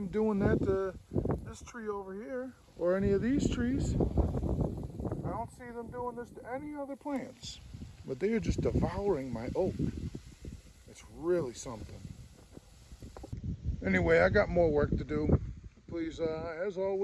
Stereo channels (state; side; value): identical; both; correlation 1.00